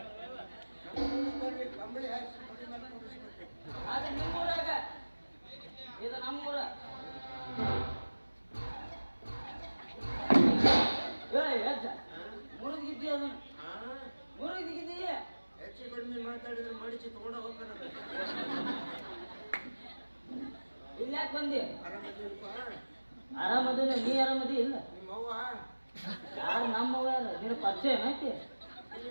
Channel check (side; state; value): both; inverted; correlation -1.00